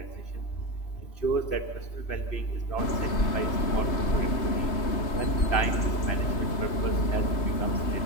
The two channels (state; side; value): late; right; 3.0 ms